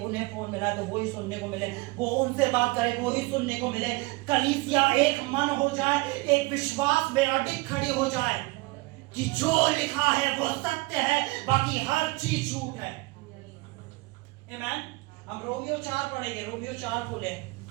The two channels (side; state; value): left; quieter; 24.0 dB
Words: फोन मिला है तो वो ही सुनने को मिले, वो उनसे बात करे वो ही सुनने को मिले, कलीसिया एक मन हो जाए, एक विश्वास में अडिग खड़ी हो जाए कि जो लिखा है वो सत्य है, बाकी हर चीज झूठ है। आमीन। हम रोमियो 4 पढ़ेंगे, रोमियो 4 खोले,